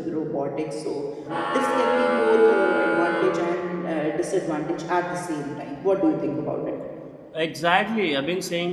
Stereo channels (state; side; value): identical; both; correlation 1.00